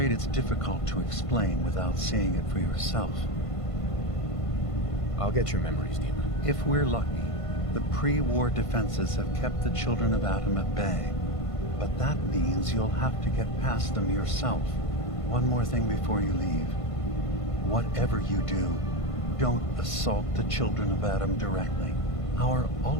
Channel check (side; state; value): right; late; 1.5 ms